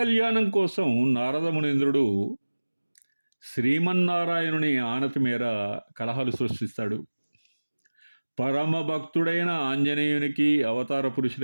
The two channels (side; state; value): both; inverted; correlation -1.00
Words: కోసం నారద మునీంద్రుడు శ్రీమన్నారాయణుని ఆనతి మేర కలహాలు సృష్టిస్తాడు. పరమ భక్తుడైన ఆంజనేయునికి అవతార